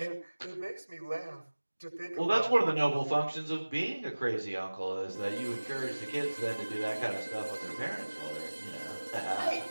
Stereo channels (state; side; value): inverted; both; correlation -1.00